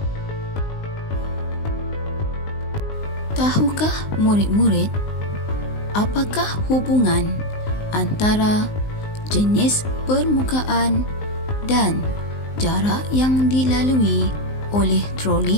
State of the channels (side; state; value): right; late; 19 ms